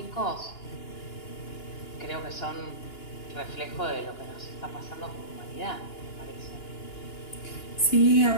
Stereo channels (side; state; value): right; late; 2.9 ms